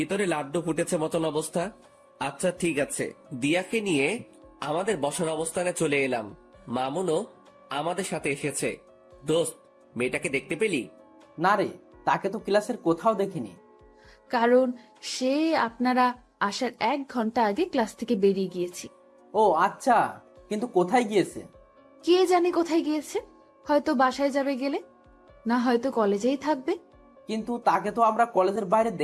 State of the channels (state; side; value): identical; both; correlation 1.00